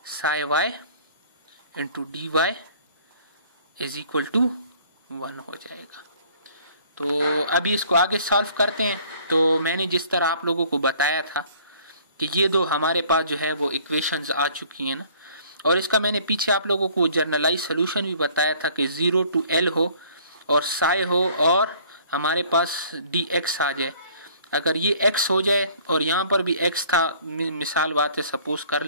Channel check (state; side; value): inverted; both; correlation -0.55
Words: psi Y into d y is equal to 1 हो जाएगा। तो अभी इसको आगे सॉल्व करते हैं। तो मैंने जिस तरह आप लोगों को बताया था कि ये दो हमारे पास जो है वो इक्वेशंस आ चुकी हैं ना, और इसका मैंने पीछे आप लोगों को जर्नलाइज सोल्यूशन भी बताया था कि 0 to l हो और साई हो और हमारे पास dx आ जाए। अगर ये x हो जाए और यहाँ पर भी x था, मिसाल बात है सपोज कर